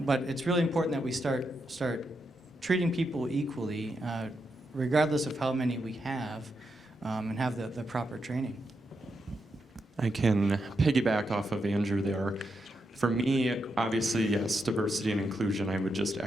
it's really important that we start treating people equally, regardless of how many we have, and have the proper training. I can piggyback off of Andrew there. For me, obviously, yes, diversity and inclusion, I would just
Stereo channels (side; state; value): both; normal; correlation 0.84